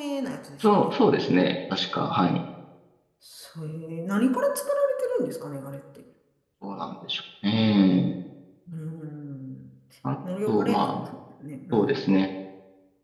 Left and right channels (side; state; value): both; identical; correlation 1.00